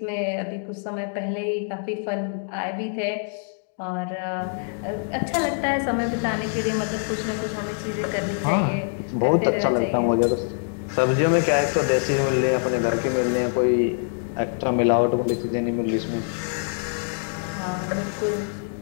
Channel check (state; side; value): silent; right; 62 dB below the other